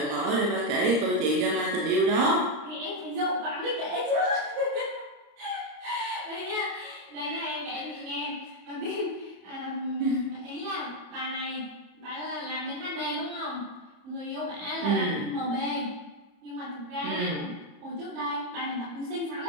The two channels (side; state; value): left; late; 33 ms